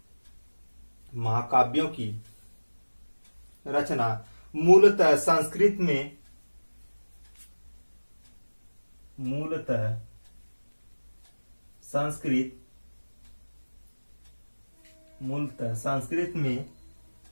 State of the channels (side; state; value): both; inverted; correlation -1.00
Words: महाकाव्यों की रचना मूलतः संस्कृत में